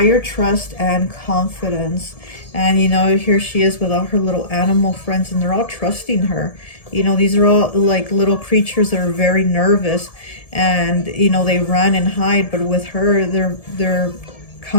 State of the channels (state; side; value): late; right; 1.7 ms